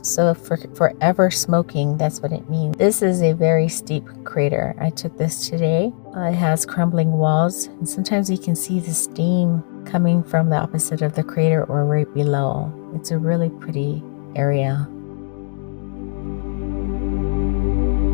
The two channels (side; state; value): right; silent; digital silence